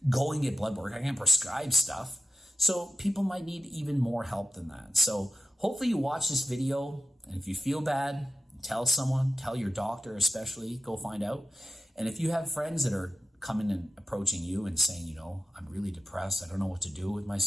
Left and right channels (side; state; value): both; normal; correlation 0.90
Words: go and get blood work. I can't prescribe stuff. So people might need even more help than that. So hopefully you watch this video, and if you feel bad, tell someone, tell your doctor especially, go find out. And if you have friends that are coming and approaching you and saying, I'm really depressed, I don't know what to do with